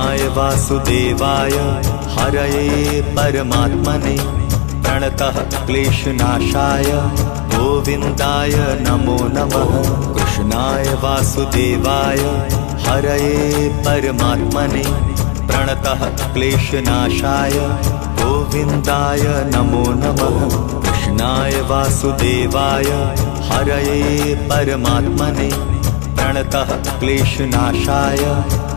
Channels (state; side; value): quieter; right; 33.9 dB